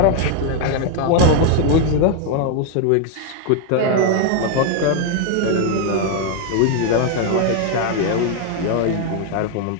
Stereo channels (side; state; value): both; different; correlation 0.01